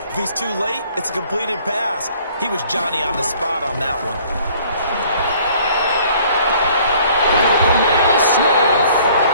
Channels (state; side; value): inverted; both; correlation -0.56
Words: If he's too late, it's a completed pass. He was Johnny on the spot on that one. The man is Smith.